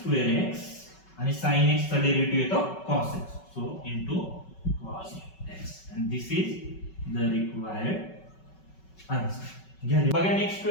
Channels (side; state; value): right; late; 5.3 ms